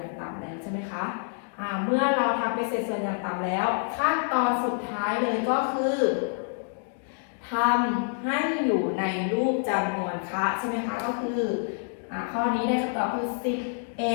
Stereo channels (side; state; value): right; silent; 60 dB below the other